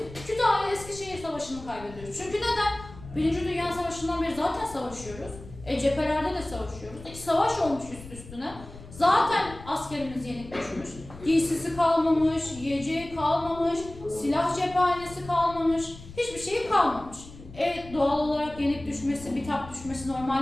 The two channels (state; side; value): noise; left; rumble, 16 dB below the sound